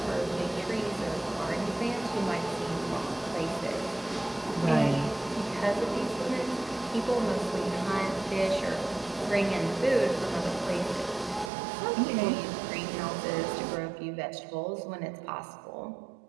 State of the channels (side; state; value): left; drops out; at 11.5 s